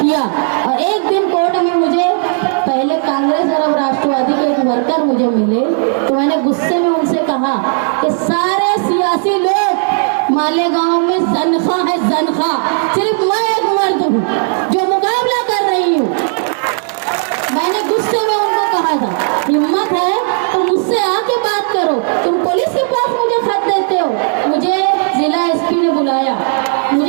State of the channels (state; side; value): silent; left; 58 dB below the other